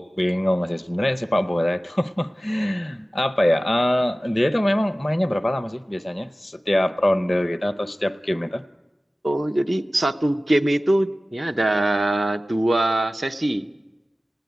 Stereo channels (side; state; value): both; normal; correlation 0.97